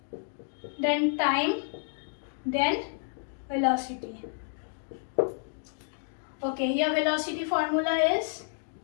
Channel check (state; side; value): silent; right; digital silence